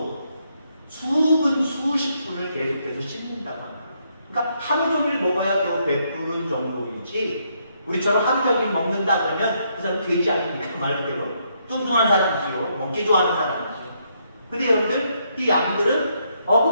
수십 분을 계속해서 씹는다고 합니다. 그러니까 하루 종일 먹어야 겨우 배부른 정도이지 우리처럼 하루 종일 먹는다 그러면 그 사람 돼지 아닙니까? 말 그대로. 뚱뚱한 사람이지요. 먹기 좋아하는 사람이지요. 근데 여러분들, 이 양들은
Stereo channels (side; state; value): both; inverted; correlation -0.75